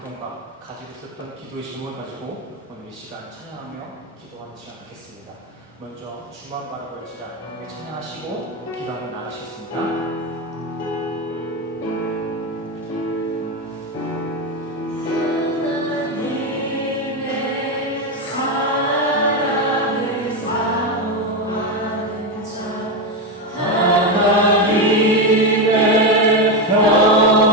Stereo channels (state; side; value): normal; both; correlation 0.11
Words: 가지고 있었던 기도의 질문을 가지고 오늘 이 시간 찬양하며 기도하는 시간 갖겠습니다. 먼저 주만 바라볼지라 함께 찬양하시고 기도하며 나가시겠습니다.